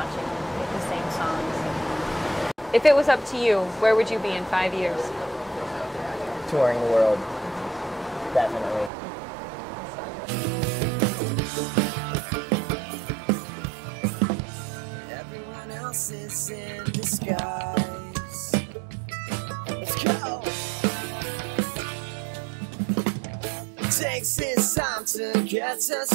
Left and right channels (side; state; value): left; drops out; at 8.9 s